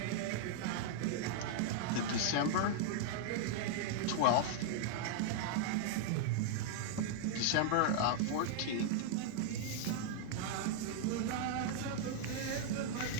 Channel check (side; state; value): both; different; correlation 0.00